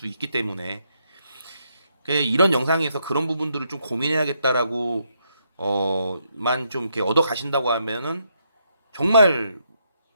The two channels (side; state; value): both; inverted; correlation -0.77